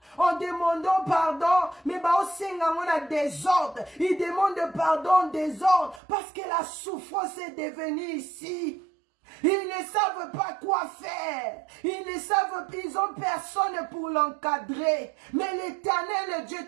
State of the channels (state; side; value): drops out; left; at 6.0 s